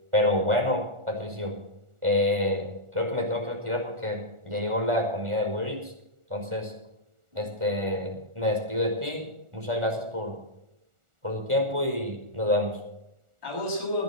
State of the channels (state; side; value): late; left; 1.4 ms